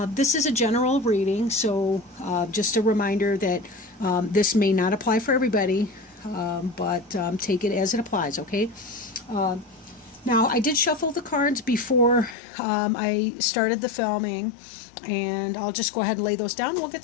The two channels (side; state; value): right; drops out; at 12.4 s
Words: This is a general reading, so just a reminder that this may not apply for everybody, but take it as it applies, okay? Now, I did shuffle the cards before I started the filming, and I'll just go ahead and lay those down and we'll